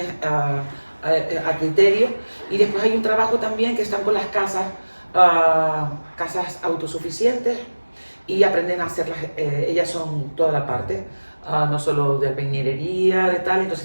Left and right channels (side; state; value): both; inverted; correlation -1.00